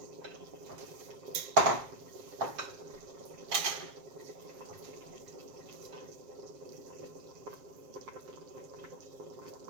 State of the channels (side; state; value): left; late; 7.5 ms